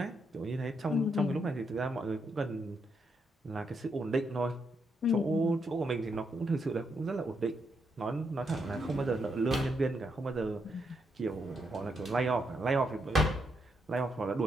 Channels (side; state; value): both; normal; correlation 0.79